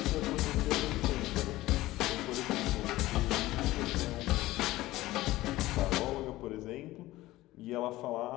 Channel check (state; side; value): quieter; right; 17.3 dB